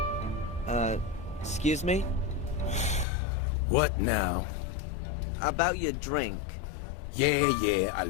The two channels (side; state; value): right; drops out; at 3.1 s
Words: Excuse me? What now? About your drink. Yeah, I